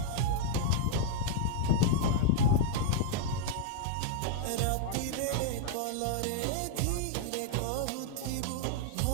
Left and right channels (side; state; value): both; different; correlation -0.01